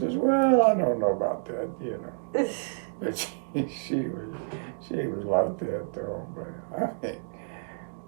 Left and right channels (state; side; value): silent; left; digital silence